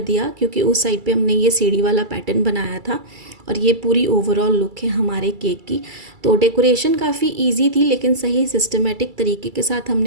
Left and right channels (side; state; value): left; late; 2.3 ms